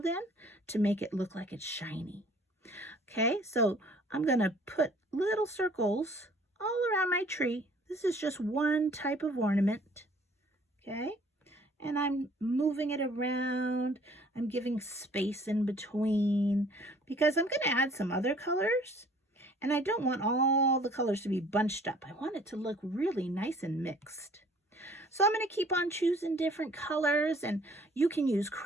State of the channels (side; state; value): both; normal; correlation 0.55